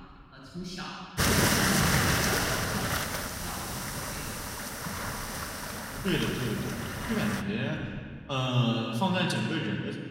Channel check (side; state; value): both; identical; correlation 1.00